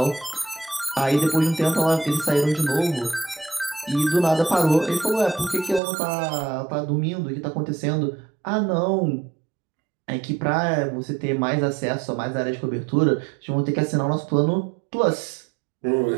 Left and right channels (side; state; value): left; drops out; at 5.8 s